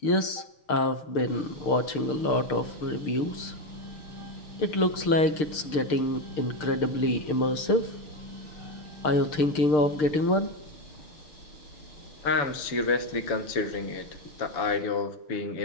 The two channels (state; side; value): late; right; 6.6 ms